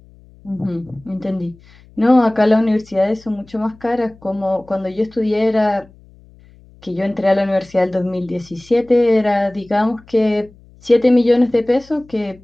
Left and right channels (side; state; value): left; noise; hum, 26 dB below the sound